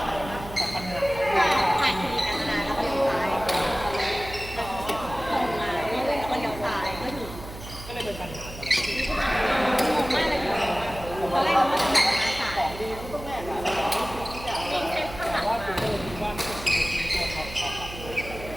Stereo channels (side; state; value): right; noise; hum, 13 dB below the sound